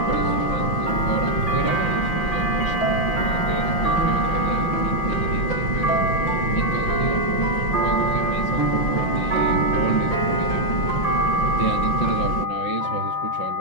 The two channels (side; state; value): right; late; 5.8 ms